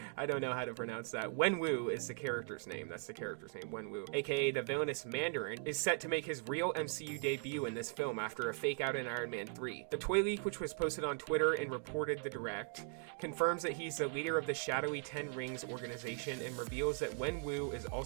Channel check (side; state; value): left; silent; 52 dB below the other